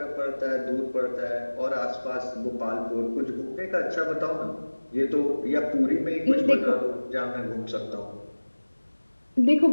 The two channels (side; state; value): both; inverted; correlation -1.00